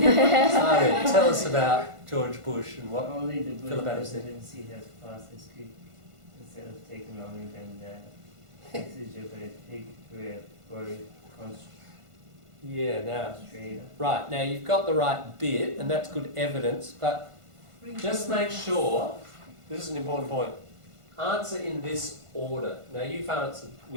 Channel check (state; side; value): late; left; 1.5 ms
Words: tell us about George Bush and what only the Philip Bush Adams said. presidency has passed as quick instead of taking longer than that. This is a very Yeah, now, concentrated. right, now you've got the right bit, and that's good evidence, but just make sure, this is an important point, answer in this order. Now you've answered